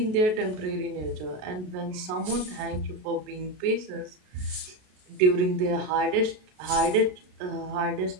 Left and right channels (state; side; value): late; left; 33 ms